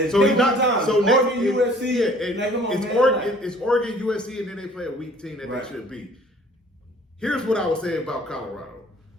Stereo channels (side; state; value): both; normal; correlation 0.53